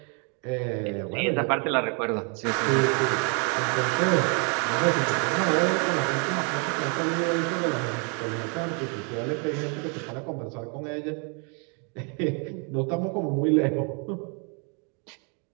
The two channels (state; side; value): quieter; left; 36.8 dB